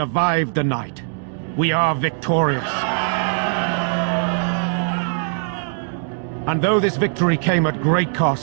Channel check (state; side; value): silent; left; digital silence